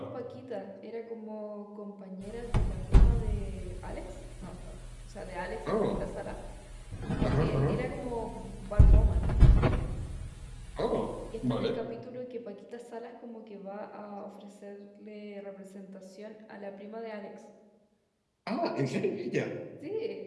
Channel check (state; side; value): identical; both; correlation 1.00